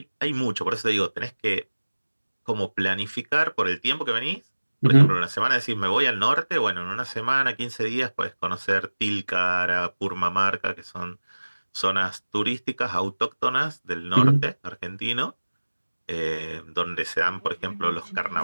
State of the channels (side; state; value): both; inverted; correlation -1.00